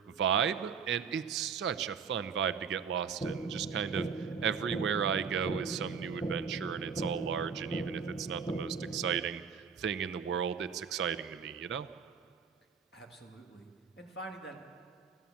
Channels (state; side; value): quieter; left; 6.3 dB